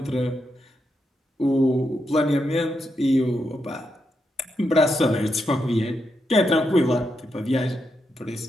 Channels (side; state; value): both; normal; correlation 0.83